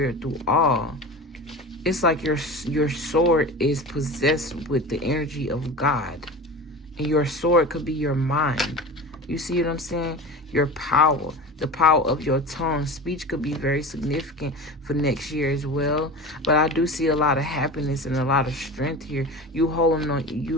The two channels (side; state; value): both; normal; correlation 0.32